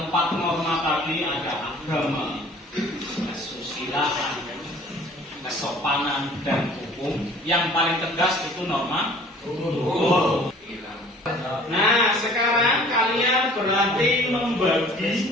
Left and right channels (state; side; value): normal; both; correlation 0.50